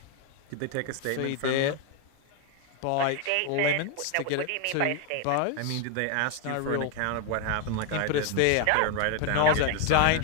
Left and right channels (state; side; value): different; both; correlation 0.01